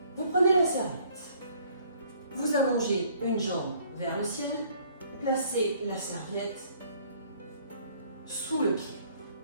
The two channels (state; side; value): inverted; both; correlation -0.61